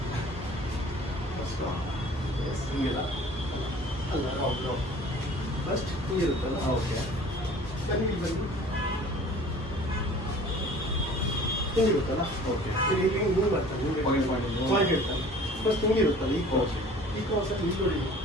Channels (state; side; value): normal; both; correlation 0.47